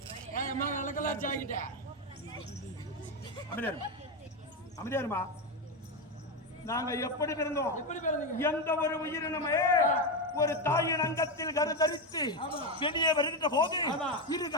என் அம்மா நல்லக்கெல்லாம் ஜாக்கிட்டா அமைதியாருமா நாங்க எப்படி பிறந்தோம்? எப்படி பிறந்தீங்க? எந்த ஒரு உயிரினமே ஒரு தாயின் அங்கத்தில் கருத்தரித்து வெளியே வருகின்ற போது இரு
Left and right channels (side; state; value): both; normal; correlation 0.11